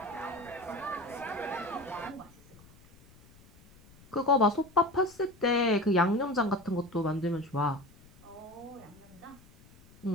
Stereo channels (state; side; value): noise; left; rumble, 25 dB below the sound